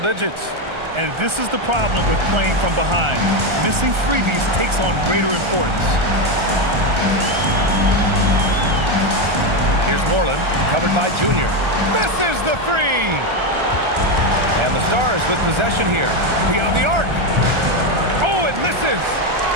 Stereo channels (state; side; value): late; left; 1.3 ms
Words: And this is the problem with playing from behind. Missing freebies takes on greater importance. Here's Moreland, covered by Junior. Misses the 3! And the Stars with possession here. Beyond the arc. Oh, it misses!